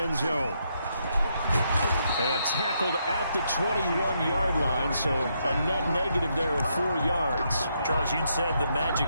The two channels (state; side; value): inverted; both; correlation -0.78